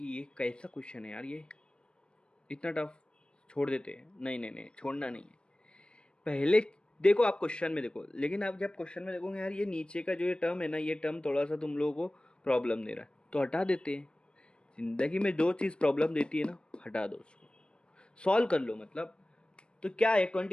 ये कैसा क्वेश्चन है यार, ये इतना टफ, छोड़ देते हैं। नहीं नहीं नहीं, छोड़ना नहीं है। पहले देखो, आप क्वेश्चन में देखो, लेकिन आप जब क्वेश्चन में देखोगे यार ये नीचे का जो ये टर्म है ना, ये टर्म थोड़ा सा तुम लोगों को प्रॉब्लम दे रहा है, तो हटा देते हैं। जिंदगी में जो चीज़ प्रॉब्लम देती है ना, हटा दो उसको, सॉल्व कर लो। मतलब तो क्या है,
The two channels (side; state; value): right; late; 0.055 ms